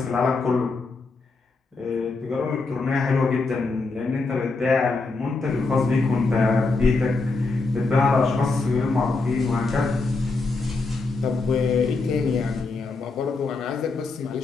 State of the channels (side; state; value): right; quieter; 3.8 dB